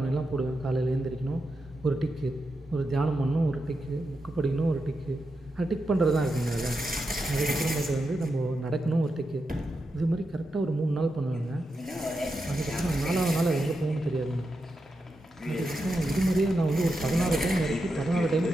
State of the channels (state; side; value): normal; both; correlation 0.87